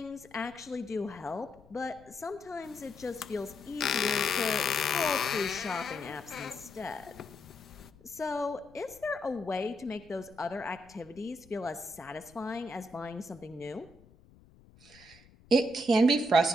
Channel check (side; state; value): left; noise; rumble, 25 dB below the sound